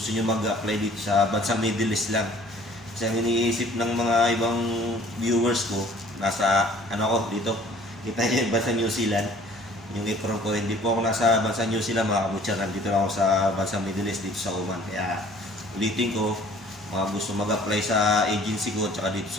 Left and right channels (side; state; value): both; normal; correlation 0.53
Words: nyo mag-apply dito sa bansang Middle East lang. Kasi ang iniisip ng mga ibang viewers ko, nasa ano ko dito, kita nyo yung bansang New Zealand. Yung apron ko, hindi po ako nasa bansang New Zealand mga butcher. Nandito lang ako sa bansang Middle East dito sa Oman. Kaya ulitin ko, mga gusto mag-apply sa agency ko at dito